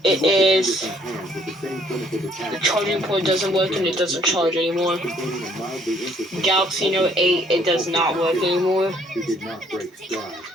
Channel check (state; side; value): normal; both; correlation 0.63